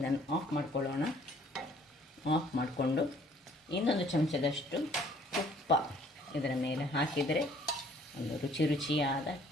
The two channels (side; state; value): both; normal; correlation 0.59